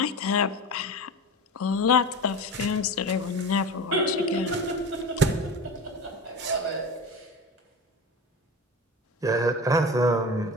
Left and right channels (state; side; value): normal; both; correlation 0.30